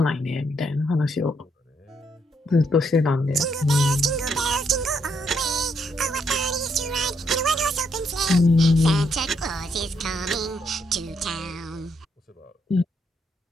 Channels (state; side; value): normal; both; correlation 0.75